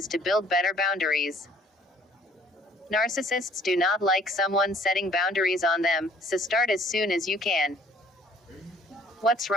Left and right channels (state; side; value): normal; both; correlation 0.57